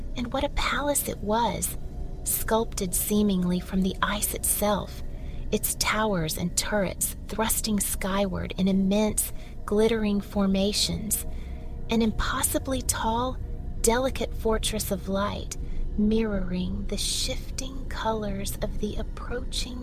and what a palace it was, sculpted seemingly from the ice itself, its towers and turrets thrusting skyward in immense, glittering formations, an impossibly tall, delicate fortress of light, mirroring the shifting colors of the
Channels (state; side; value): identical; both; correlation 1.00